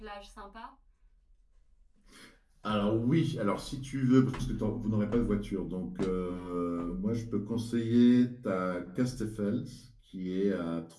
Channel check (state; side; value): identical; both; correlation 1.00